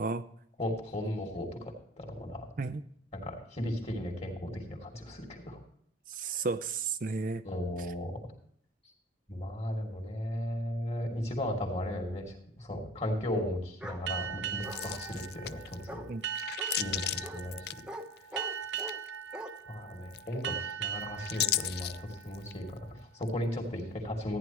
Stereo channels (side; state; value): both; normal; correlation 0.43